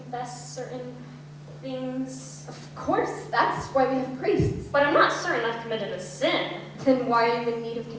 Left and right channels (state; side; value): identical; both; correlation 1.00